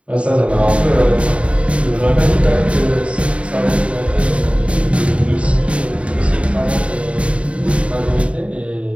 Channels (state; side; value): late; left; 0.061 ms